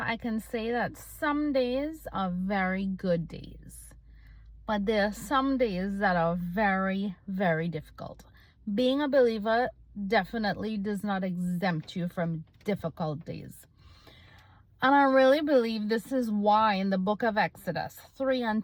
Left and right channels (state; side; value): identical; both; correlation 1.00